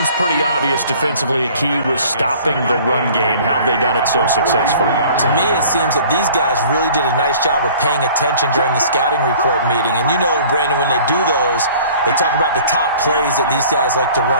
pretty obvious defensively a key was stopping the run game. How have they done it so successfully? To me, it seems that these guys really did a nice job of paying attention during the scouting report meeting. And you know, Brandon, when they do those, they talk about the top plays that these guys like to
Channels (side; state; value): both; inverted; correlation -0.49